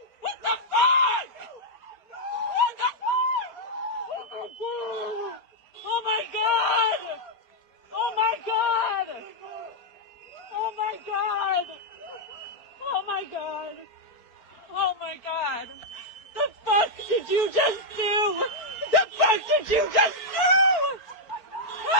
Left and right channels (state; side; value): late; right; 4.5 ms